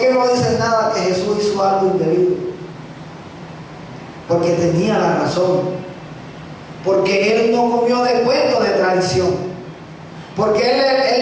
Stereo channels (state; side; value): identical; both; correlation 1.00